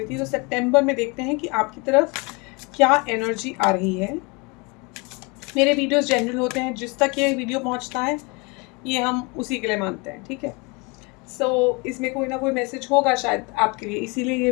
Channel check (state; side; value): quieter; right; 29.0 dB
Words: थी। तो सितंबर में देखते हैं कि आपकी तरफ क्या एनर्जी आ रही है। मेरे वीडियोस जनरल होते हैं, जिस तक ये वीडियो पहुंचता है ये हम उसी के लिए मानते हैं, ठीक है। इसमें कोई ना कोई मैसेज होगा शायद आपके लिए, इसीलिए ये